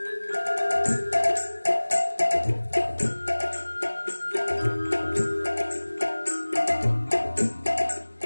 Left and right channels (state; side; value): inverted; both; correlation -1.00